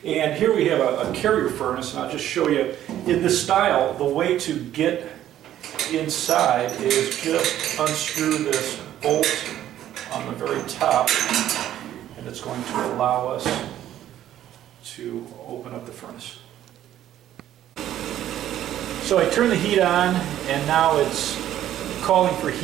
And here we have a carrier furnace, and I'll just show you in this style. The way to get inside is just unscrew this bolt on the very top, and it's going to allow us to open up the furnace. So I turn the heat on, and now it's calling for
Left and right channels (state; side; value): quieter; left; 12.0 dB